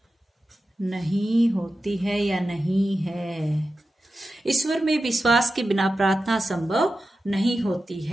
नहीं होती है या नहीं है। ईश्वर में विश्वास के बिना प्रार्थना संभव नहीं होती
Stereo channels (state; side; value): normal; both; correlation 0.92